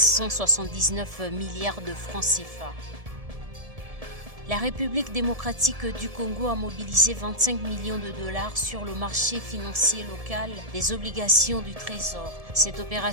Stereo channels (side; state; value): left; late; 1.7 ms